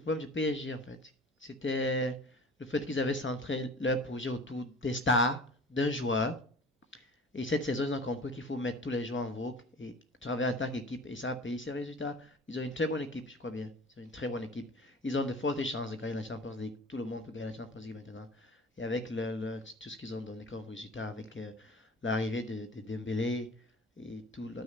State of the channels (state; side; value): normal; both; correlation 0.42